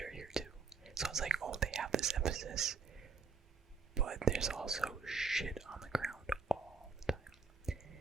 here too. So it's like, oh, they have this emphasis, but there's also shit on the ground all the time.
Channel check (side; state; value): left; quieter; 5.1 dB